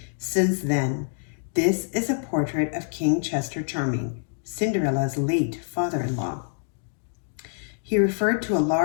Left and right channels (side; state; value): right; silent; digital silence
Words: since then. This is a portrait of King Chester Charming, Cinderella's late father-in-law. He referred to a